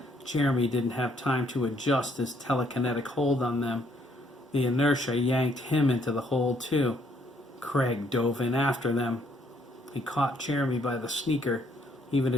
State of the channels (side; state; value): both; normal; correlation 0.68